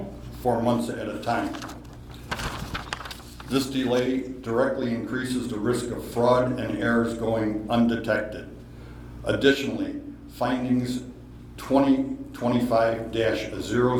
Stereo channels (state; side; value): identical; both; correlation 1.00